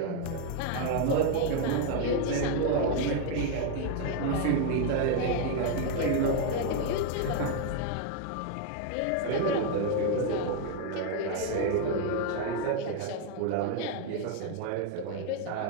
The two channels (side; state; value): both; different; correlation 0.01